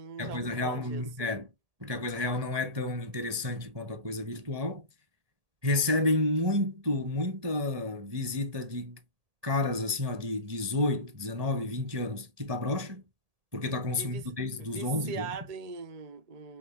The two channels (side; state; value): left; late; 1.8 ms